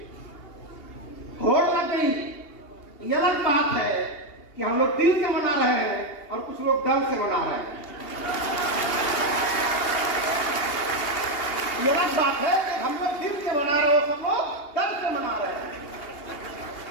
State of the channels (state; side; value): late; right; 2.8 ms